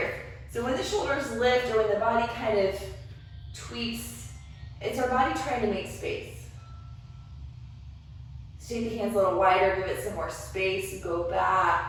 So when the shoulders lift or when the body kind of tweaks, it's our body trying to make space. So take the hands a little wider, give it some more space, go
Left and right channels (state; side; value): identical; both; correlation 1.00